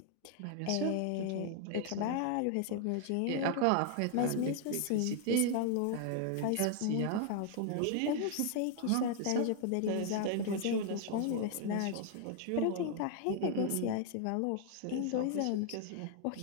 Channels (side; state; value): both; different; correlation 0.00